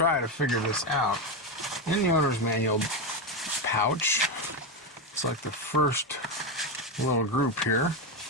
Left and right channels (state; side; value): normal; both; correlation 0.11